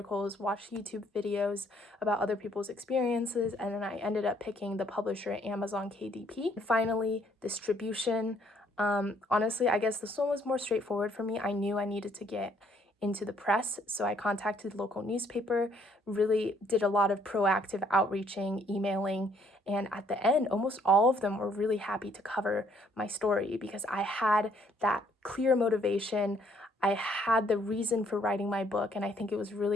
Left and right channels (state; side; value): normal; both; correlation 0.66